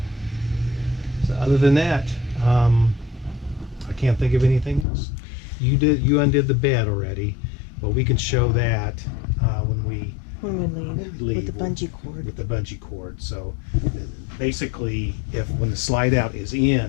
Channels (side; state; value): right; drops out; at 4.9 s